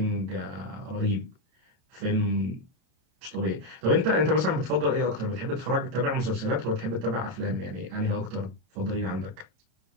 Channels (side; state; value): left; late; 32 ms